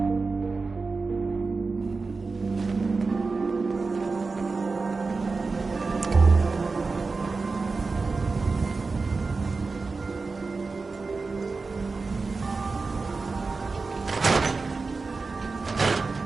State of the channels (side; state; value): left; quieter; 4.1 dB